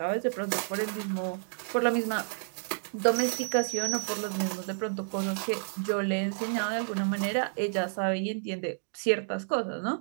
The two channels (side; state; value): left; silent; digital silence